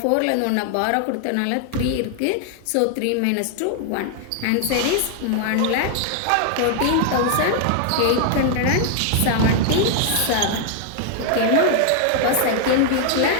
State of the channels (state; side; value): different; both; correlation 0.00